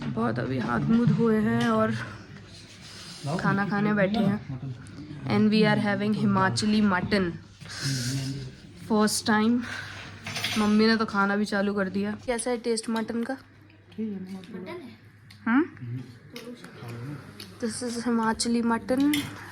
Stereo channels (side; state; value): both; identical; correlation 1.00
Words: बहुत अभी हाथ मुँह धोए हैं और खाना खाने बैठे हैं। And we are having Himachali mutton first time. मम्मी ने तो खाना भी चालू कर दिया। कैसा है टेस्ट मटन का? This is Himachali mutton.